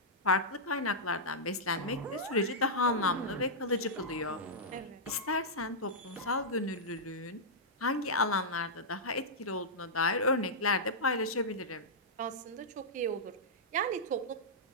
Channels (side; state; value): both; normal; correlation -0.11